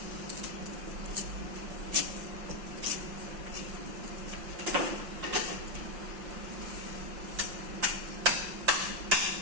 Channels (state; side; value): late; left; 5.7 ms